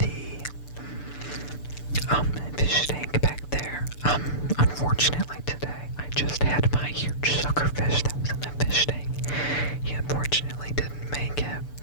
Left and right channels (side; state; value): right; late; 6.8 ms